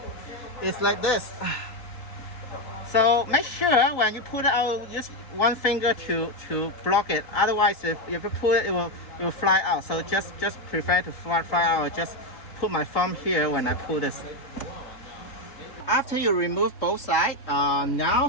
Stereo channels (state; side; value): late; right; 3.7 ms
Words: It's like this. So make sure when you pull it out, use 1 finger to block it. Otherwise, if you pull it, it will fly out. So just prefer to fly out. Just put my thumb here when I pull this. After you remove both sides,